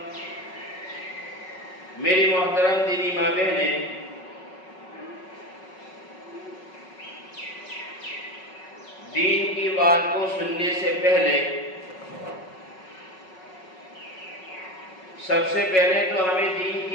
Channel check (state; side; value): late; right; 5.4 ms